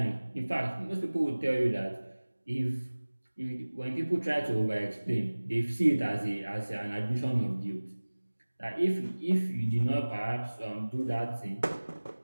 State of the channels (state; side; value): inverted; both; correlation -1.00